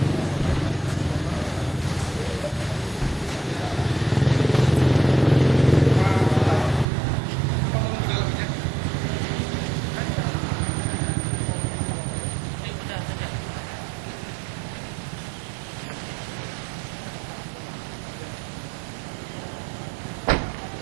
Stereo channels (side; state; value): left; drops out; at 6.9 s